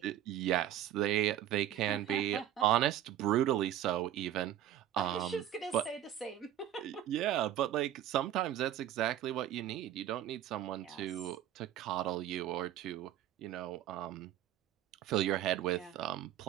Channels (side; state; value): left; quieter; 11.7 dB